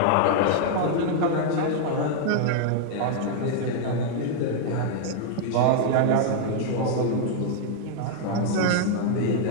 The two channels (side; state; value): both; different; correlation 0.00